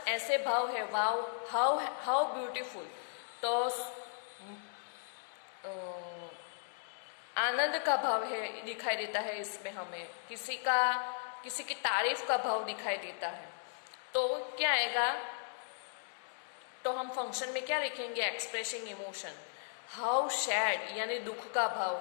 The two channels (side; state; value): right; silent; digital silence